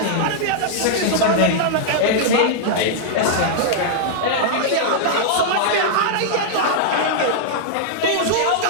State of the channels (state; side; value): different; both; correlation -0.01